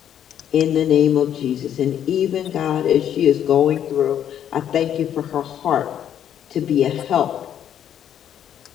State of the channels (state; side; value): quieter; right; 9.9 dB